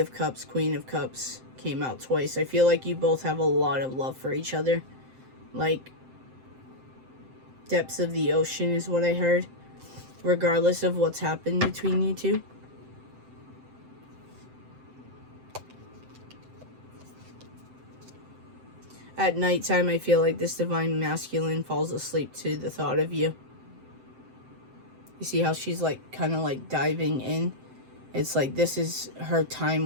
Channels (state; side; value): late; left; 7.7 ms